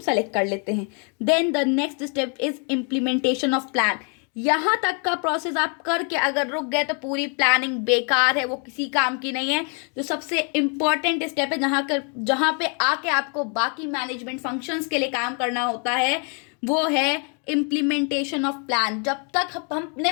सेलेक्ट कर लेते हैं। Then the next step is implementation of plan. यहाँ तक का प्रोसेस आप करके अगर रुक गए तो पूरी प्लानिंग बेकार है, वो किसी काम की नहीं है। जो सबसे इंपॉर्टेंट स्टेप है जहाँ पे आके आपको बाकी मैनेजमेंट फंक्शंस के लिए काम करना होता है, वो है इम्प्लीमेंटेशन ऑफ प्लान। जब तक हमने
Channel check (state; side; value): quieter; right; 38.6 dB